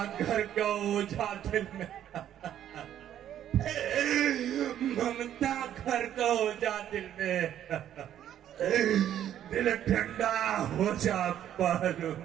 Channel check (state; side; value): quieter; left; 10.9 dB